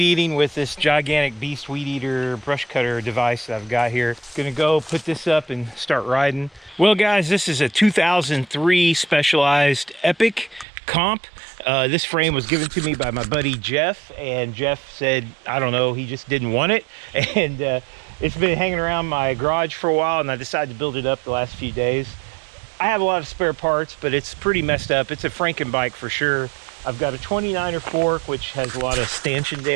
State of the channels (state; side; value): drops out; left; at 10.7 s